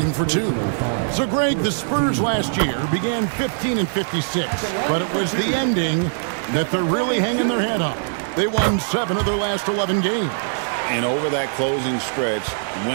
for 2. So, Greg, the Spurs last year began 15 and 56, but it was the ending that they're really hanging their head on. They won 7 of their last 11 games. And over that closing stretch,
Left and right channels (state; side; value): silent; left; digital silence